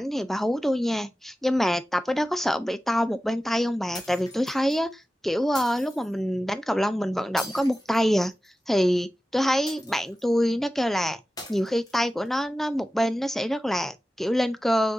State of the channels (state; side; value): normal; both; correlation 0.95